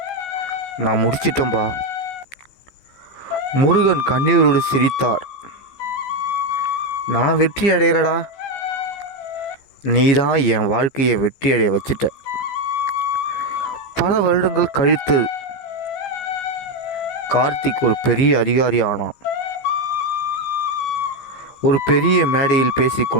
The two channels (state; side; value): late; right; 15 ms